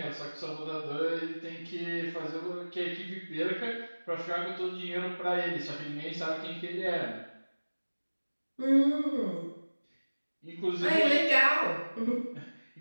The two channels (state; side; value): inverted; both; correlation -1.00